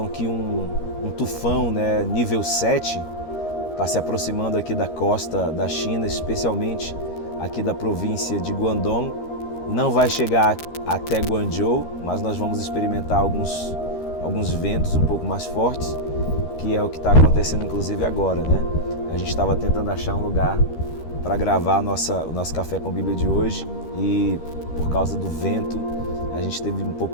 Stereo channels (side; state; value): right; late; 13 ms